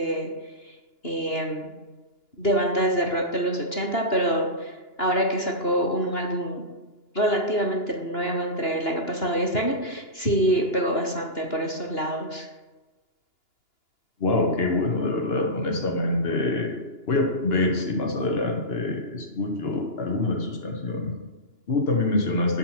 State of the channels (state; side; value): late; right; 2.9 ms